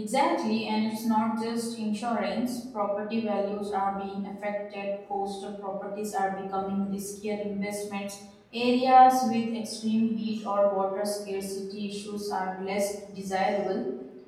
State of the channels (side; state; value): both; identical; correlation 1.00